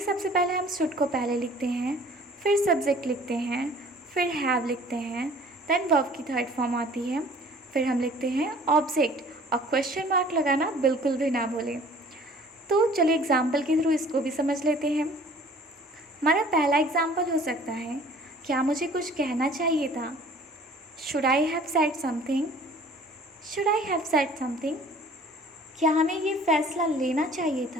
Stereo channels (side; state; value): both; normal; correlation 0.51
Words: पहले हम शुड को पहले लिखते हैं, फिर सब्जेक्ट लिखते हैं, फिर हैव लिखते हैं, देन वर्ब की थर्ड फॉर्म आती है, फिर हम लिखते हैं ऑब्जेक्ट, और क्वेश्चन मार्क लगाना बिल्कुल भी ना भूलें। तो चलिए एग्जाम्पल के थ्रू इसको भी समझ लेते हैं। हमारा पहला एग्जाम्पल हो सकता है, क्या मुझे कुछ कहना चाहिए था, should I have said something, should I have said something. क्या हमें ये फैसला लेना चाहिए